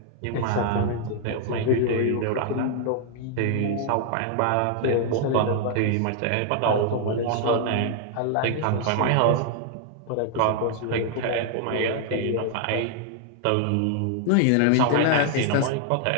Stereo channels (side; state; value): both; different; correlation 0.00